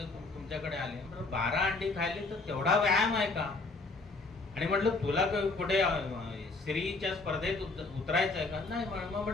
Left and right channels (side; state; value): right; quieter; 3.6 dB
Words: तुमच्याकडे आले. म्हटलं 12 अंडी खायले तर तेवढा व्यायाम आहे का. आणि म्हटलं तुला कुठे स्त्रीच्या स्पर्धेत उतरायचं आहे का. नाही. मग